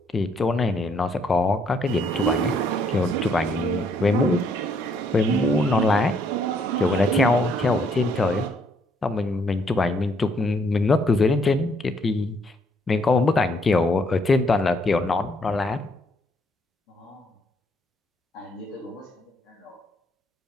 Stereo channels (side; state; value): both; normal; correlation 0.69